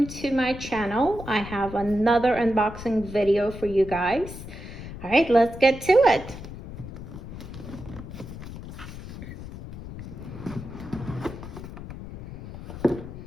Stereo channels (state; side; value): noise; left; rumble, 11 dB below the sound